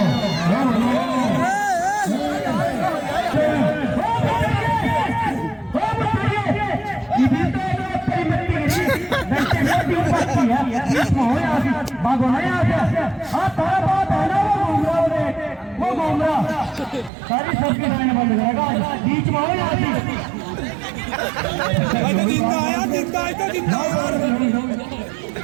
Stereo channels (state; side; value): drops out; left; at 17.1 s